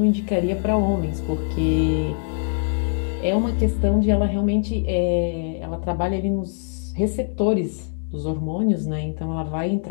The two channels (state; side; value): silent; right; digital silence